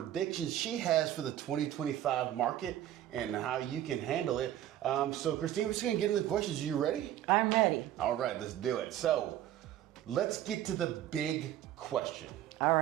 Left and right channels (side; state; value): left; quieter; 12.3 dB